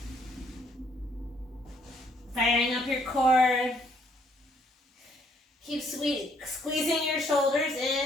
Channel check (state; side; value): normal; both; correlation 0.67